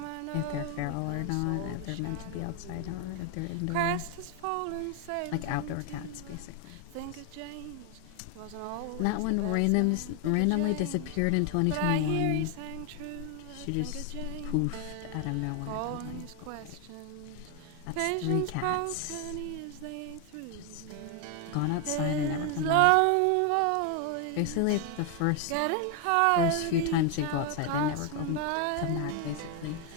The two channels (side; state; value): both; different; correlation 0.00